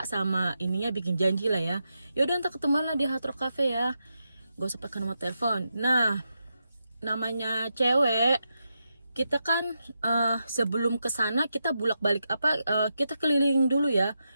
sama ininya bikin janji lah ya. Yaudah ntar ketemu lah di Hard Rock Cafe ya, gak usah pakai nomor telepon. Nah, namanya cewek, kita kan sebelum kesana kita bolak-balik kita keliling dulu ya.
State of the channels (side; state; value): both; inverted; correlation -0.86